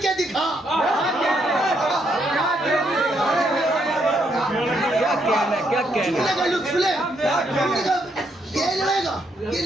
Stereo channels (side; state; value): both; normal; correlation 0.75